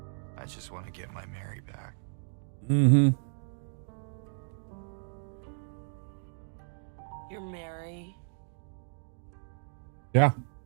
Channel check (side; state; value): left; silent; digital silence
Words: I just want to get my Mary back. Mm-hmm. You're Mary. Yeah.